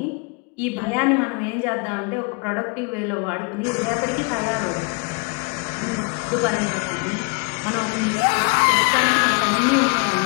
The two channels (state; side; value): quieter; right; 33.0 dB